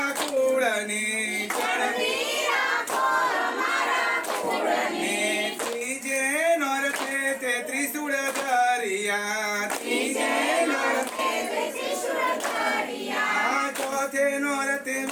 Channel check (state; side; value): identical; both; correlation 1.00